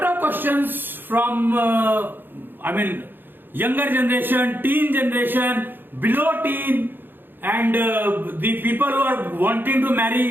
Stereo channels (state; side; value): late; left; 0.096 ms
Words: of questions from younger generation, teen generation, below teen, and the people who are wanting to